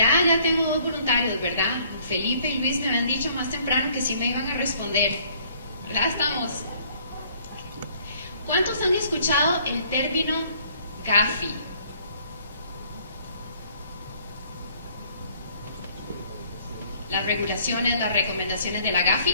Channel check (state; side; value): inverted; both; correlation -0.60